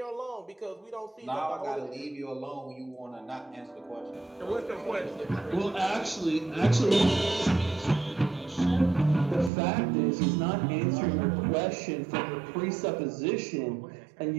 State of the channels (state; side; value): drops out; left; at 9.5 s